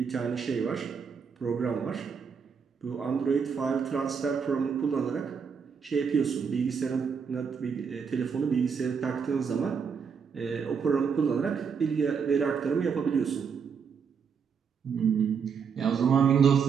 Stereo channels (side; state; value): left; quieter; 6.3 dB